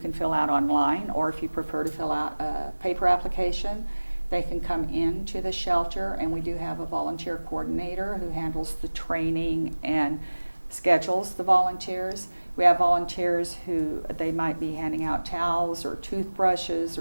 fill out online, or if you prefer to fill out a paper application, they can come into the shelter, and we do have a volunteer coordinator who handles the training and schedules the volunteers. We have volunteers who they might be handing out towels or toothbrushes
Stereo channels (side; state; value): both; inverted; correlation -1.00